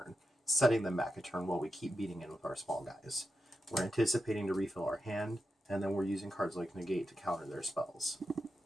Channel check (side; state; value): both; normal; correlation 0.88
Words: setting them back a turn while we keep beating in with our small guys. We're anticipating to refill our hand, and then we're using cards like Negate to counter their spells.